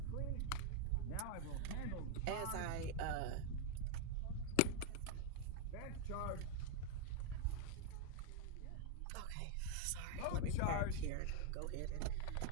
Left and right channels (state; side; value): different; both; correlation 0.00